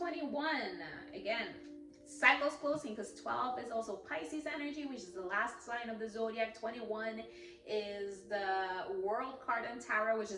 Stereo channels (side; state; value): both; identical; correlation 1.00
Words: again, cycles closing, because 12 is also Pisces energy, which is the last sign of the zodiac. 21 is the world card in tarot, which